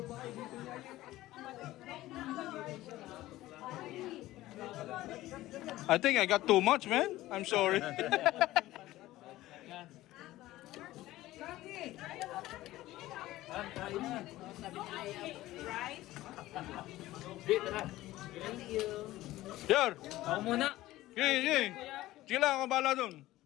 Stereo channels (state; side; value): quieter; right; 16.3 dB